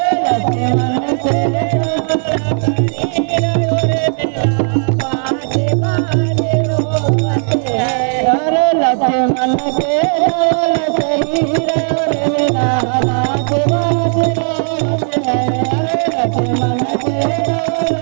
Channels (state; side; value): silent; left; digital silence